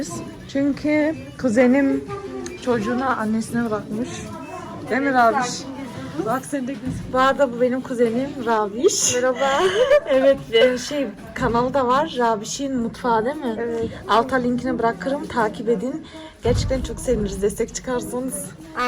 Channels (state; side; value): identical; both; correlation 1.00